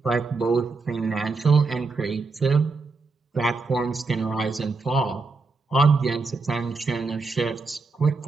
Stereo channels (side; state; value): left; quieter; 4.0 dB